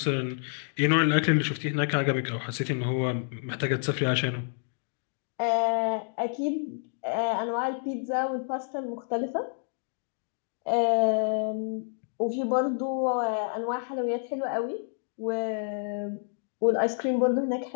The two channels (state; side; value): silent; right; digital silence